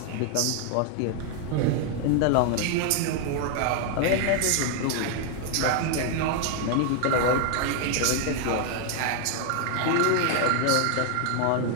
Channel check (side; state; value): both; different; correlation 0.00